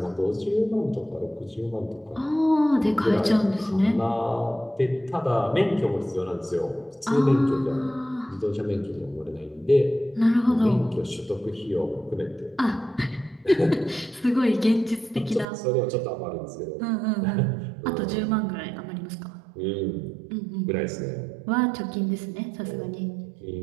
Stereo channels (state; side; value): drops out; left; at 15.5 s